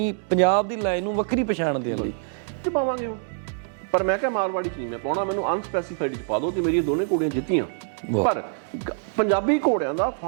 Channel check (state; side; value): silent; left; digital silence